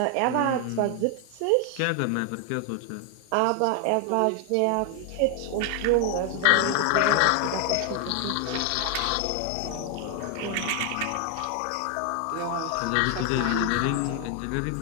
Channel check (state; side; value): different; both; correlation 0.00